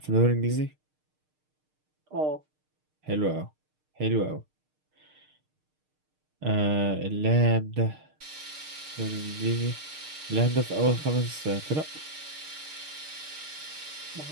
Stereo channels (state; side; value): late; left; 6.6 ms